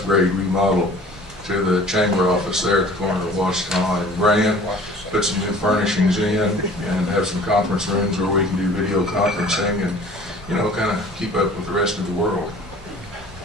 remodel to the chamber office there at the corner of Washington and Grand. Put some new furnishings in and have some conference rooms where we can do video conferencing and, kind of keep up with the rest of the world.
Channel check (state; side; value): normal; both; correlation 0.48